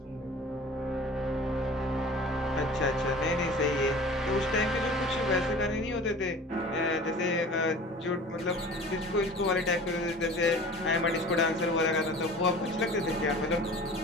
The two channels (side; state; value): both; normal; correlation 0.42